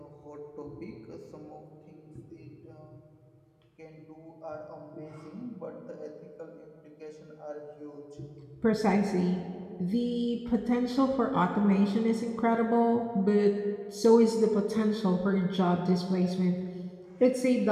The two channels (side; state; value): both; identical; correlation 1.00